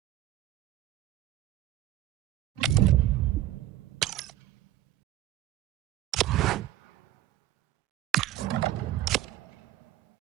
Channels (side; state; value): left; quieter; 13.4 dB